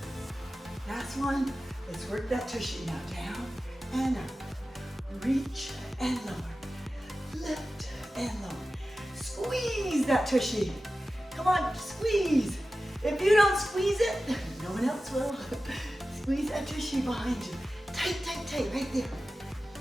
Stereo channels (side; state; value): both; normal; correlation 0.95